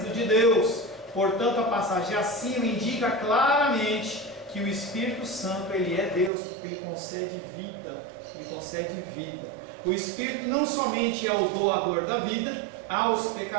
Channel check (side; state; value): left; drops out; at 6.3 s